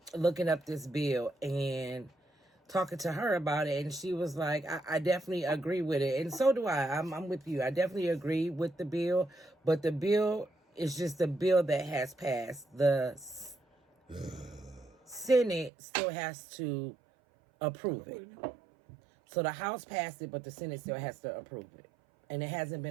looking up this bill and talking to her about it, and she was like, I definitely agree with it. And so do I. I'm with you. I definitely agree with the bill, but the bill is just a bill that has passed. The Senate still has to approve it. So the House passed it, but the Senate still has to approve it. And it hasn't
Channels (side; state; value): left; drops out; at 15.7 s